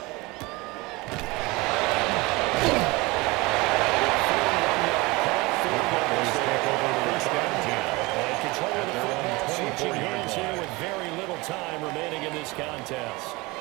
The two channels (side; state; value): left; quieter; 23.5 dB